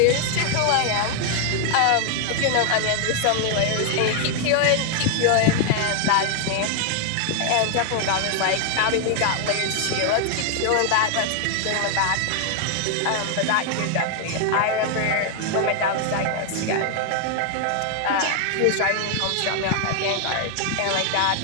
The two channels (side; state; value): both; different; correlation 0.00